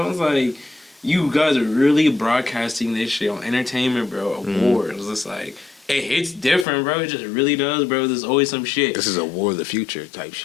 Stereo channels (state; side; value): drops out; right; at 6.7 s